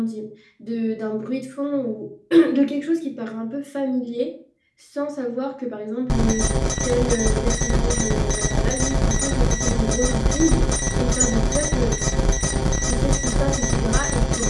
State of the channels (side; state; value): both; identical; correlation 1.00